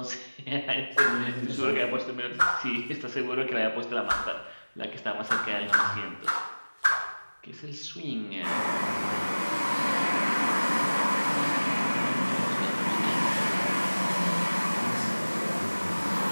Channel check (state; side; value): inverted; both; correlation -1.00